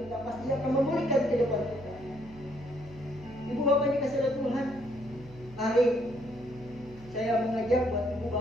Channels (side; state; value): right; noise; hum, 20 dB below the sound